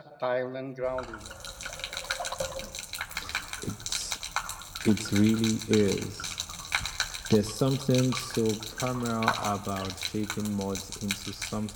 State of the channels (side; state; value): both; identical; correlation 1.00